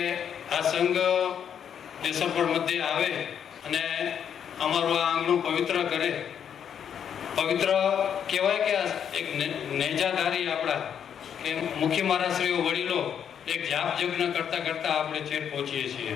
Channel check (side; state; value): right; quieter; 8.4 dB